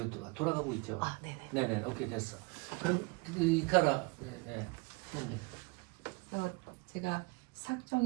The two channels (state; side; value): quieter; left; 28.1 dB